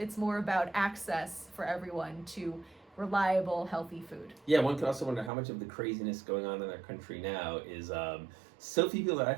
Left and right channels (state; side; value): drops out; left; at 5.3 s